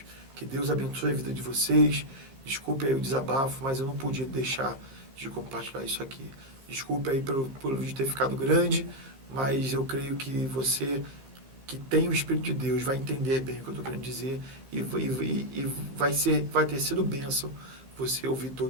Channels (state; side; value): late; left; 15 ms